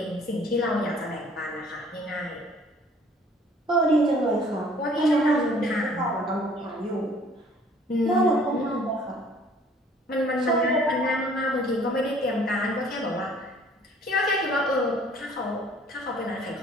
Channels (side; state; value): both; normal; correlation 0.56